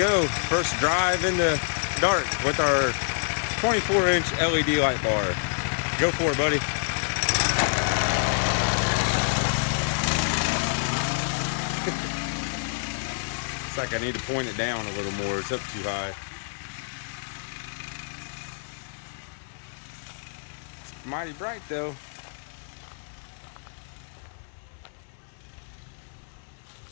First drive in the dark with our 24-inch LED light bar. Go for it, buddy. It's like I need to point it down a little more. It's up too high. It's mighty bright though.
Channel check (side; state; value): right; silent; digital silence